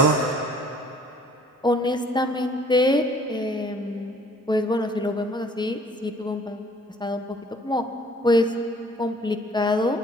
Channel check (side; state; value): both; normal; correlation 0.56